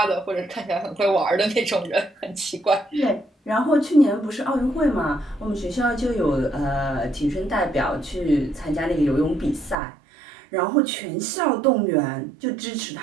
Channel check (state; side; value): drops out; left; at 9.8 s